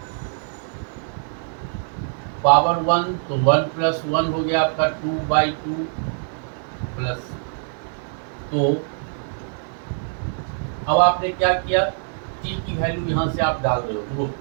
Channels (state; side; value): silent; left; 63 dB below the other